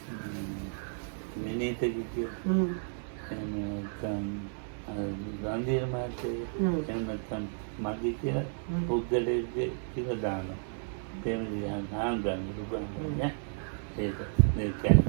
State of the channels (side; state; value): left; silent; 56 dB below the other